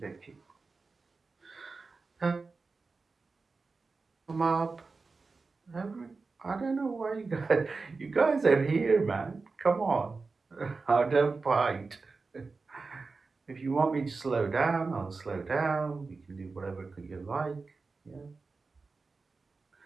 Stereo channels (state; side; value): quieter; left; 4.1 dB